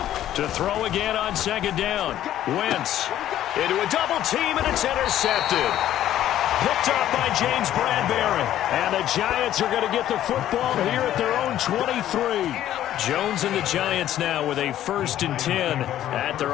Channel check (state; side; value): quieter; right; 12.3 dB